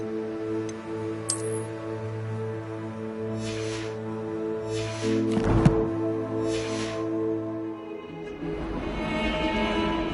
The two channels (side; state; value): both; identical; correlation 1.00